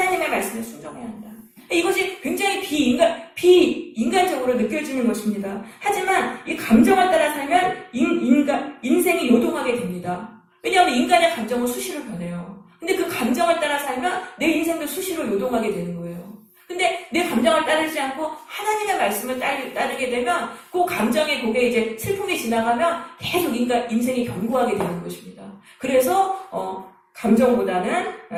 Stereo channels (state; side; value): identical; both; correlation 1.00